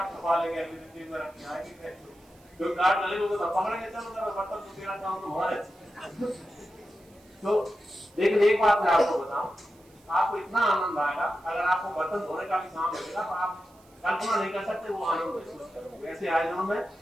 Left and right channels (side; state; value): right; noise; hiss, 30 dB below the sound